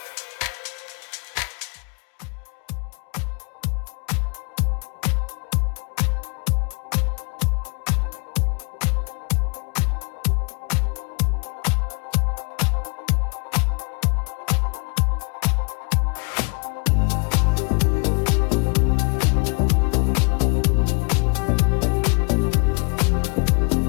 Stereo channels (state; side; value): quieter; right; 34.4 dB